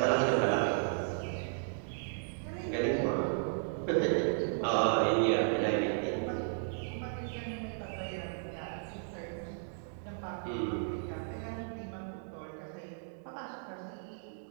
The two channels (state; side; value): silent; left; digital silence